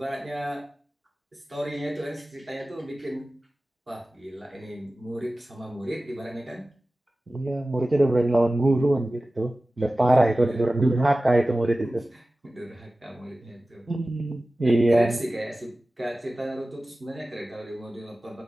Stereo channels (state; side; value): normal; both; correlation 0.96